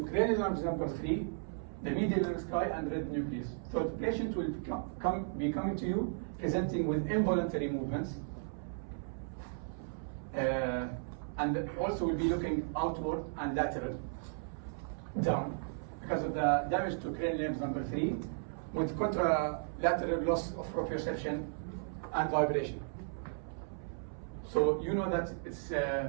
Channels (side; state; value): left; silent; 54 dB below the other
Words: cranial nerves number 3, the medial lemnisci, and red nucleus. So the patient will be coming to you presenting with involuntary movements, and also will be looking outward and lateral, down, because of the damage to cranial nerves number 3, with contralateral loss of proprioception and vibration. So you know that it's